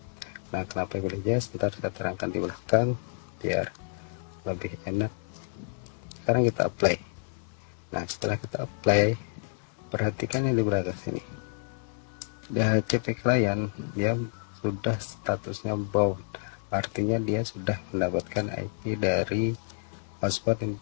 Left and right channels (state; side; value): silent; right; digital silence